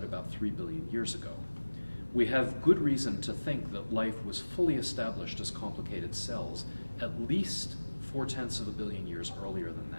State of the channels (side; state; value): both; inverted; correlation -1.00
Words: about 3 billion years ago. We have good reason to think that life was fully established as complicated cells at least 4/10 of a billion years earlier than